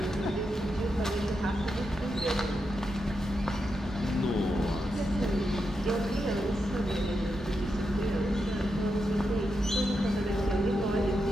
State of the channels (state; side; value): normal; both; correlation 0.86